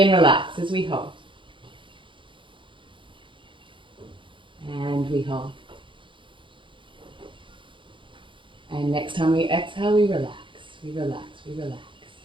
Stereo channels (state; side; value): late; left; 0.24 ms